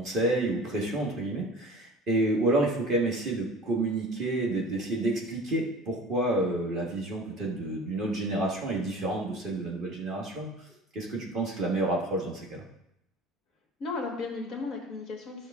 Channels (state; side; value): normal; both; correlation 0.41